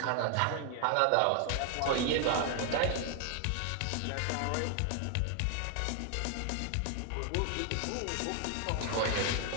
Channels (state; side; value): different; both; correlation 0.00